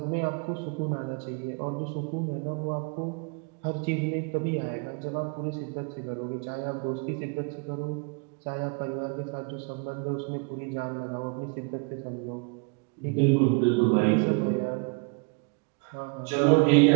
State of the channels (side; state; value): left; quieter; 34.9 dB